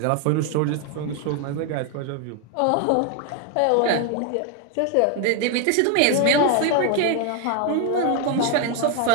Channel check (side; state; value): both; different; correlation 0.01